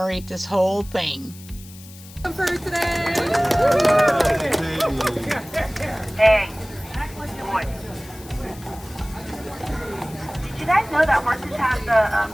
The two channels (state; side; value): noise; left; hiss, 19 dB below the sound